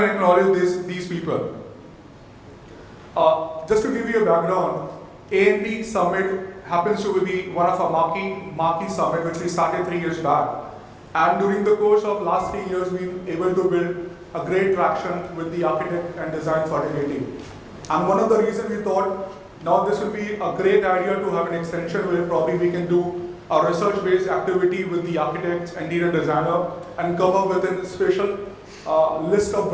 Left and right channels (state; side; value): identical; both; correlation 1.00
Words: and acknowledge these people. Just to give you a background, A&P Summit happens to be one of our marquee summit which we started 3 years back. And during the course of last 3 years, we've been able to build a great traction with the architect and design fraternity. And one of the reasons we thought, now this will be a great idea to have an extension where probably we can do a research-based activity with the architects and interior designer and come up with a special list of